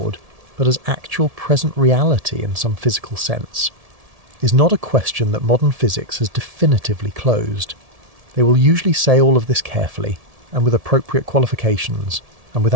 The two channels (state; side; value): late; left; 1.7 ms